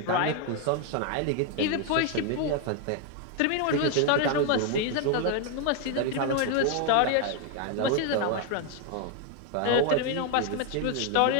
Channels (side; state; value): both; different; correlation 0.01